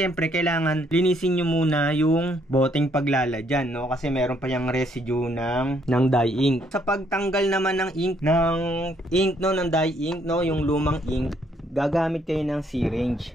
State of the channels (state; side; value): normal; both; correlation 0.69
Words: kailangan linisin niyo muna yung boteng paglalagyan, no, kasi meron pa yung residue ng dye ink. Sa pagtanggal naman ng ink no, ng dye ink, no, yung lumang ink, gagamit kayo ng syringe.